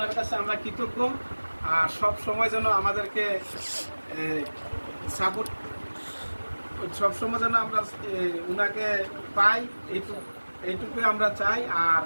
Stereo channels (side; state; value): both; inverted; correlation -1.00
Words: কাছে আমরা কৃতজ্ঞ। আর সব সময় যেন আমাদেরকে সাপোর্ট, সব সময় যেন আমরা ওনাকে পাই, এইটুকুই আমরা চাই। আর